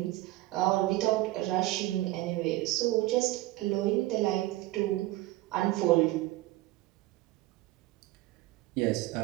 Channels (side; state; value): left; quieter; 17.9 dB